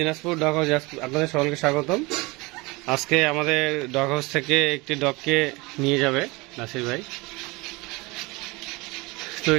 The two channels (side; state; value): left; quieter; 24.5 dB